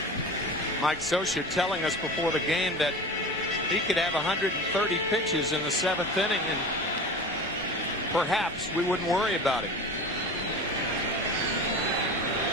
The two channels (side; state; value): both; normal; correlation 0.32